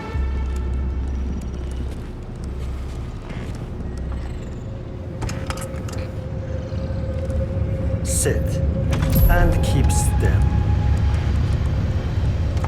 Sit and keep still.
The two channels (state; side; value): identical; both; correlation 1.00